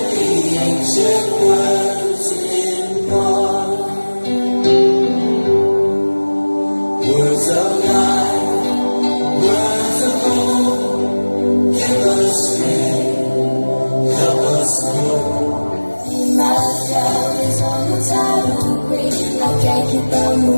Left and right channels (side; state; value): both; inverted; correlation -1.00